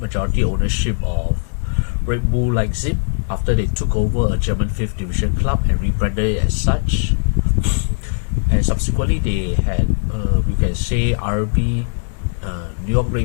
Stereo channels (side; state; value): right; silent; digital silence